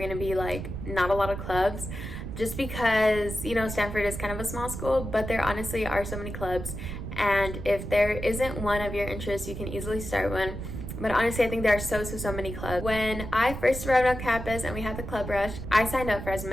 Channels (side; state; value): right; noise; rumble, 7 dB below the sound